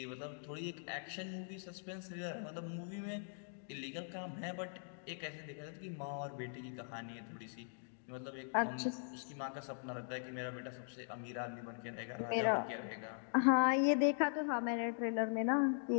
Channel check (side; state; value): right; silent; digital silence